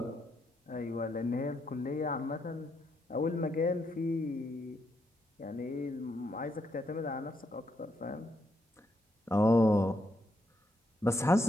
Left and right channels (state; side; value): normal; both; correlation 0.78